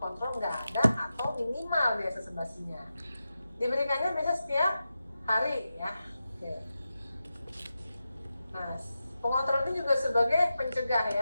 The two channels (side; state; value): both; inverted; correlation -0.91